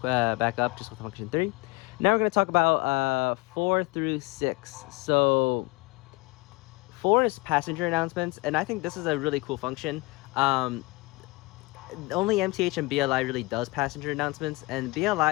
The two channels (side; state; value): right; quieter; 23.8 dB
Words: back up just with function 3. Now we're going to talk about 4 through 6. So 4 is passenger announcements, and I think this is a really cool function. Only MTH and BLI really does passenger announcements, and